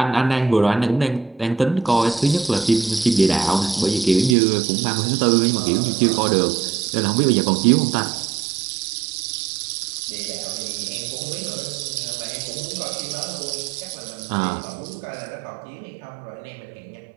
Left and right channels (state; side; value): drops out; left; at 4.4 s